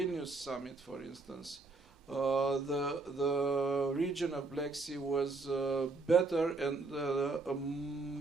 summit, for instance, the region of Black Sea was better and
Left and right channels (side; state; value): left; quieter; 3.7 dB